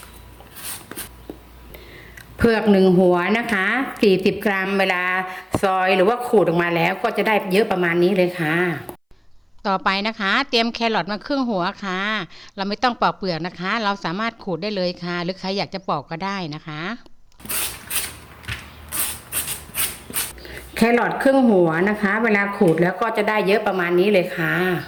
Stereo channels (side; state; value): both; identical; correlation 1.00